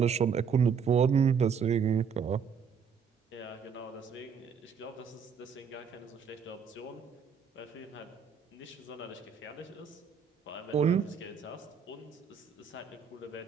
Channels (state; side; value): quieter; left; 6.6 dB